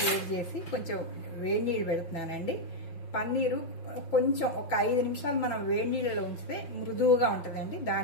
వేడి చేసి కొంచెం వేడి నీళ్ళు పెడుతున్నానండి. పన్నీరు కొంచెం ఒక 5 నిమిషాలు మనం వేడి నీళ్ళలో ఉంచితే మృదువుగా ఉంటుందండి,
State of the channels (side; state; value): right; late; 6.0 ms